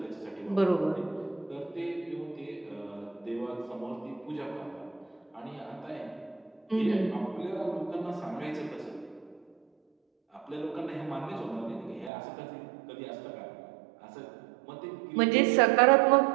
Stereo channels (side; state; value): left; drops out; at 12.1 s